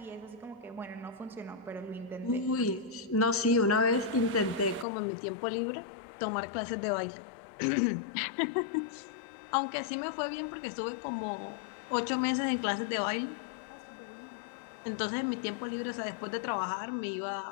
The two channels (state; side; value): drops out; right; at 4.9 s